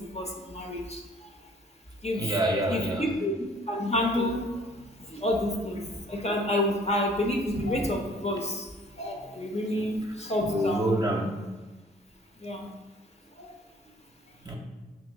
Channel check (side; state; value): both; normal; correlation 0.55